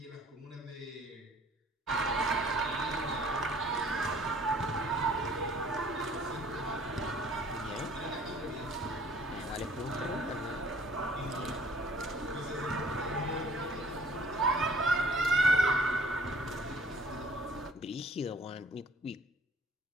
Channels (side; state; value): both; normal; correlation 0.56